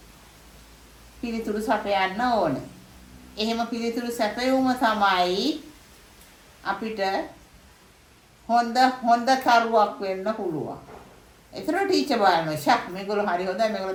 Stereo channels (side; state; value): both; identical; correlation 1.00